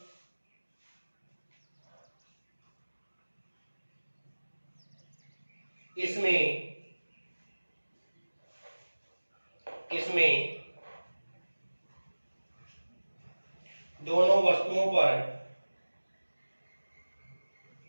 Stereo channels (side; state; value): both; inverted; correlation -1.00